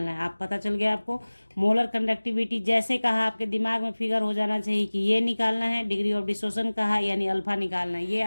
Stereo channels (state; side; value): inverted; both; correlation -1.00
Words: है। आप पता चल गया आपको, मोलर कंडक्टिविटी जैसे कहा आपके दिमाग में फिगर हो जाना चाहिए कि ये निकालना है। डिग्री ऑफ डिसोसिएशन कहा यानी अल्फा निकालना है। ये